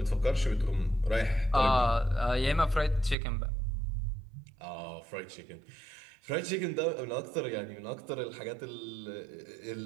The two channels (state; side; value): drops out; left; at 3.2 s